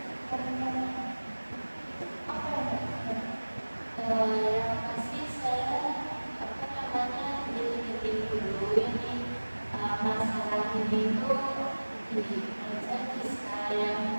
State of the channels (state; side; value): inverted; both; correlation -1.00